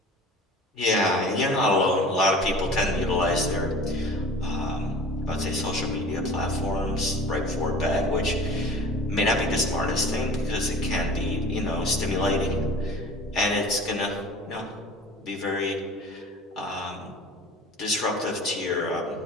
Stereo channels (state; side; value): normal; both; correlation 0.42